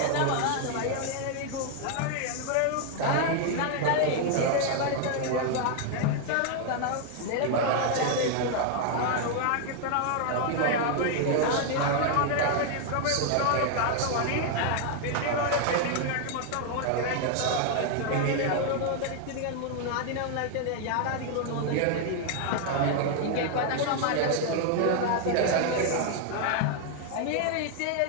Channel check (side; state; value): both; different; correlation 0.00